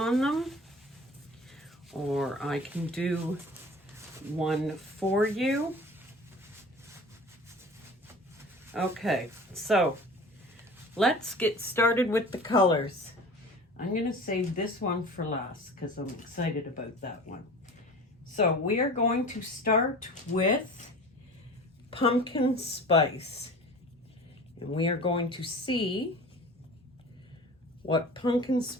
them, or I can do one for you. Okay, so let's get started with the colors. I'm going to save this one for last because I'm excited about that one. So we are going to start with pumpkin spice, and we are going to see what pumpkin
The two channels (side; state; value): both; normal; correlation 0.40